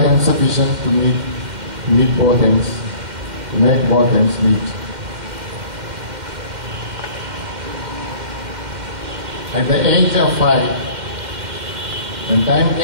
insufficient to meet both ends, to make both ends meet. At the age of 5, when time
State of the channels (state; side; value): late; left; 2.1 ms